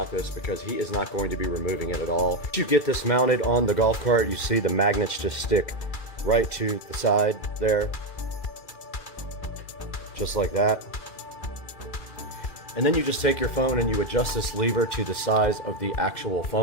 this because he is not going to be removing it at all. Once you get this mounted on the golf cart, you see the magnets just stick right to the side there. Just like that. And then you just take your phone and you adjust this lever to the size of the actual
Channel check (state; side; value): late; right; 2.3 ms